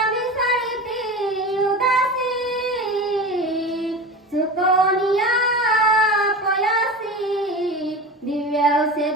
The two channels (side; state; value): both; normal; correlation 0.29